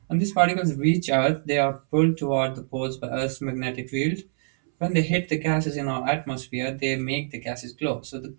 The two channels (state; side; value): silent; left; 62 dB below the other